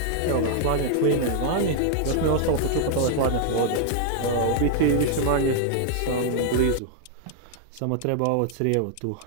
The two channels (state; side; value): different; both; correlation 0.00